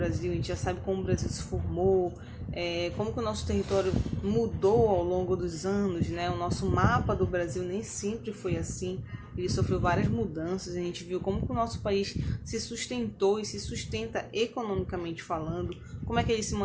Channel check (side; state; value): both; identical; correlation 1.00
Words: a gente já sabe como o Brasil se formou, como que o nosso território mudou ao longo dos anos, né? O nosso mapa do Brasil nem sempre foi assim, ele sofreu várias mudanças, a gente viu como que o nosso país se sustentou e se sustenta economicamente falando, como é que ele se